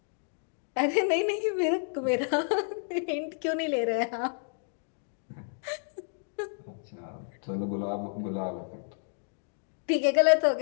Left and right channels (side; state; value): right; silent; digital silence